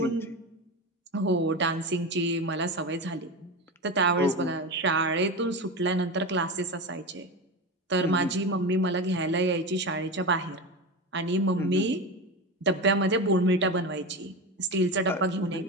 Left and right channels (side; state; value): both; normal; correlation 0.22